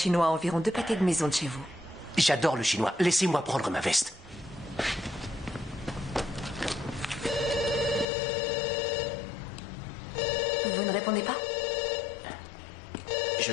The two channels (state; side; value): drops out; right; at 8.1 s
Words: à environ 2 pâtés de maison de chez vous. J'adore le chinois. Laissez-moi prendre ma veste. Vous ne répondez pas? Je